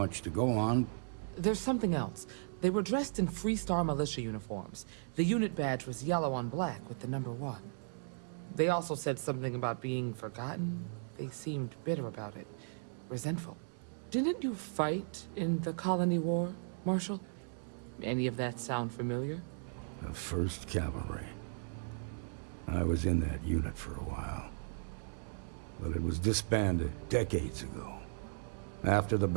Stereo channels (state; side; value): silent; left; digital silence